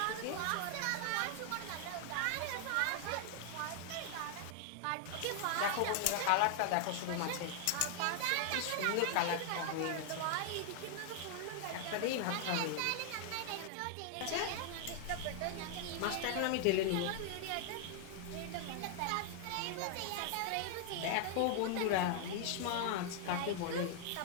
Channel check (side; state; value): both; different; correlation 0.00